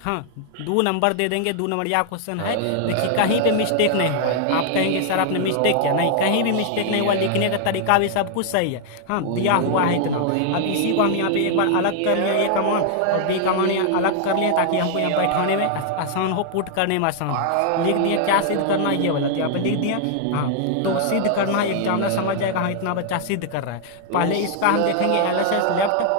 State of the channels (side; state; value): both; different; correlation -0.01